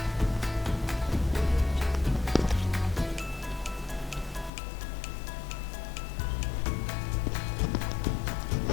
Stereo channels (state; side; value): drops out; right; at 4.5 s